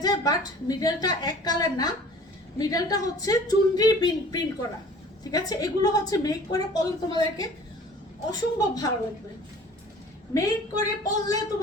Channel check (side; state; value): both; normal; correlation 0.48